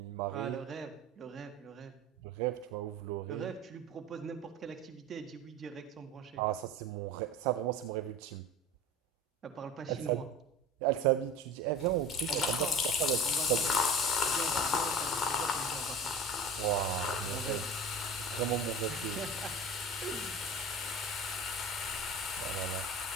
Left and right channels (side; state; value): both; normal; correlation 0.35